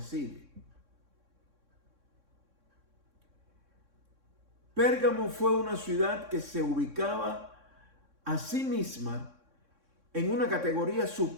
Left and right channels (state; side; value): late; left; 3.6 ms